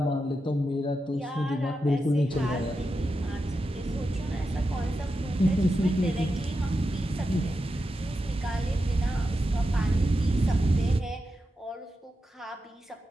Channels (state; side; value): normal; both; correlation 0.89